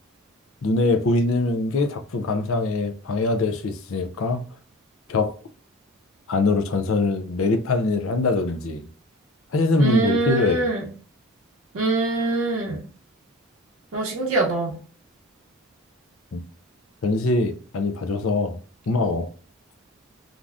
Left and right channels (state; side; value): normal; both; correlation 0.38